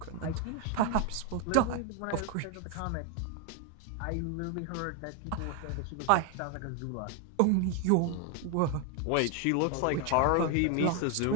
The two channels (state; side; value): different; both; correlation 0.01